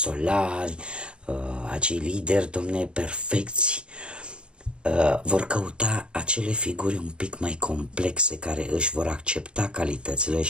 acei lideri, domne, perfecți. Vor căuta acele figuri un pic mai complexe care își vor accepta calitățile,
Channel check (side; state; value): left; late; 0.055 ms